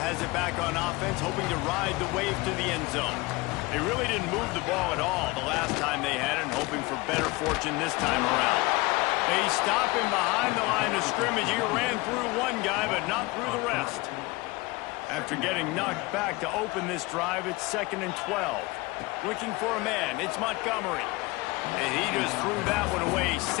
has it back on offense, hoping to ride the wave to the end zone. They really didn't move the ball at all the last time they had it, and hoping for better fortune this time around. They stop him behind the line of scrimmage. He ran through one guy, but not through the rest. After getting knocked back to open this drive, it's 2nd and 12. Looking for a man, it's Montgomery. And he just threw that one away.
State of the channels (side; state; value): right; quieter; 22.8 dB